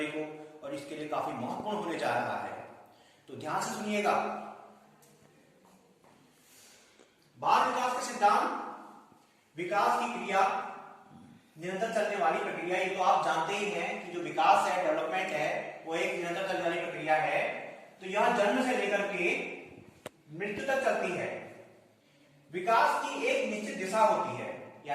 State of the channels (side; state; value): both; identical; correlation 1.00